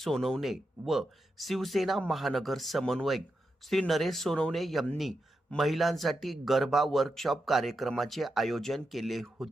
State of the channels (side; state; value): both; normal; correlation 0.87